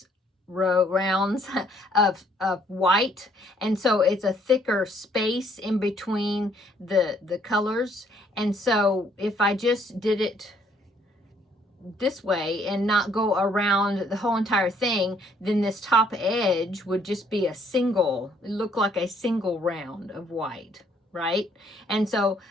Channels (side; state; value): both; normal; correlation 0.65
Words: of white, and so it's a thicker space in between the colors. And so if I just did it this way and not go around the whole entire thing, then this top edge would just be look like a single round of white, right? And so